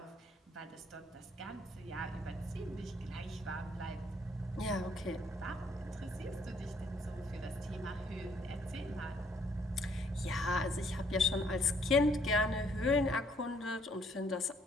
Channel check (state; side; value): normal; both; correlation 0.66